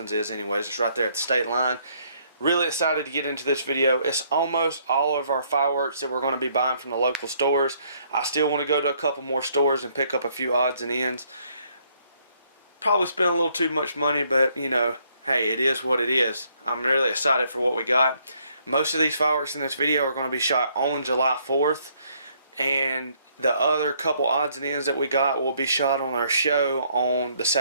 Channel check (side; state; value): both; inverted; correlation -0.68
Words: is anyways. It's right there at the state line. Really excited to get into this video. It's almost all of our fireworks that we're going to be buying from the local stores. I still want to go to a couple more stores and pick up a few odds and ends. Probably spent a little too much money, but you know, hey, it is what it is. I'm really excited for what we got. Most of these fireworks in this video are going to be shot on July 4th, and the other couple odds and ends that we got will be shot on our show on the